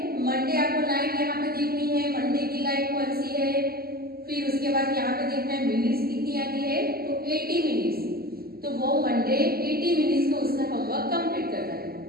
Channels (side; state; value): left; late; 0.44 ms